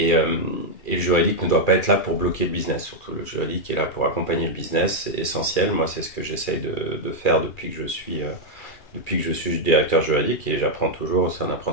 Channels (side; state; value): right; late; 2.4 ms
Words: euh, et le juridique ne doit pas être là pour bloquer le business. Surtout, le juridique est là pour accompagner le business. C'est essentiel. Moi, c'est ce que j'essaye de faire depuis que je suis directeur juridique. Et j'apprends toujours. C'est un